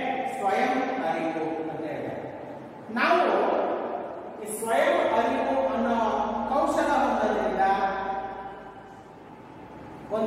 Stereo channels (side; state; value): both; identical; correlation 1.00